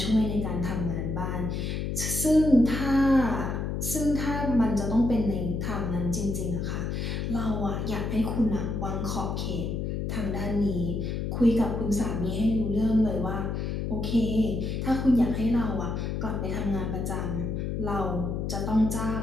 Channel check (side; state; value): left; noise; hum, 2 dB below the sound